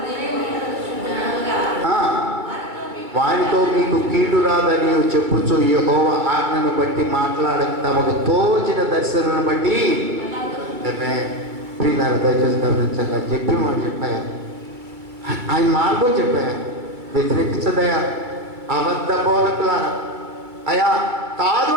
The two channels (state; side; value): late; left; 2.2 ms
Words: వారితో మీకు కీడు రాదని చెప్పుచు యెహోవా ఆజ్ఞను బట్టి మాట్లాడక తమకు తోచిన దర్శనను బట్టి ప్రియులారా దయచేసి గమనించాలి. చెప్పి మాట చెప్పాయా, ఆయన మార్గం చెప్పాయా, వ్యతిరేకించదయా అబద్ధ బోధకులారా. అయ్యా కాదు